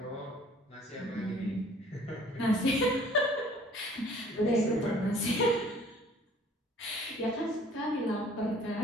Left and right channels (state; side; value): normal; both; correlation 0.53